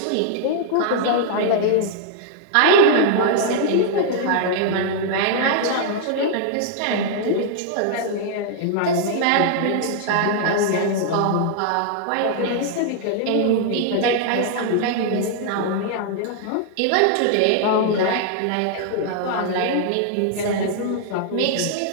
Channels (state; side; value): different; both; correlation -0.01